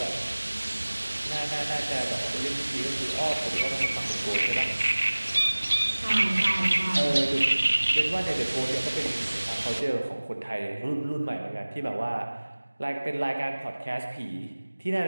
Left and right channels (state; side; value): inverted; both; correlation -1.00